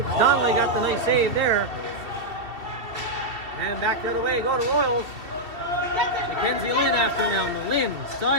Donnelly got the nice save there. And back the other way go to Royals. Mackenzie Lynn after now. Lynn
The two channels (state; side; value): late; left; 2.8 ms